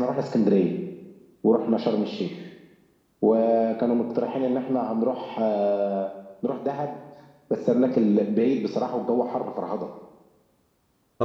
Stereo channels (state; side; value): identical; both; correlation 1.00